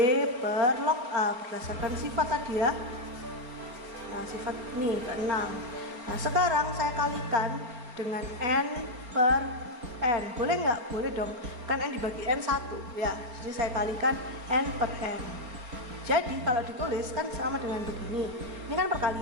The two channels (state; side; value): late; left; 4.3 ms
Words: per log A berdasarkan sifat tadi ya. Nah sifat ini ke-6. Nah sekarang saya kalikan dengan N per N. Boleh nggak? Boleh dong, kan N dibagi N 1 ya, jadi saya kalikan N per N. Jadi kalau ditulis kan sama dengan begini, ini kan